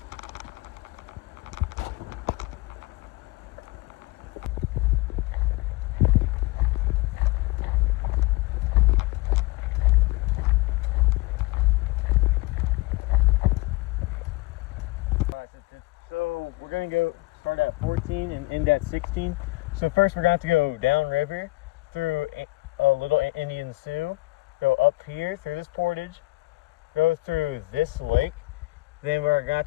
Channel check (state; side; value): quieter; right; 21.5 dB